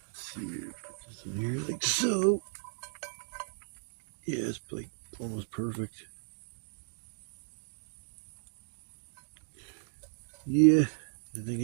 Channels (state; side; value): silent; left; digital silence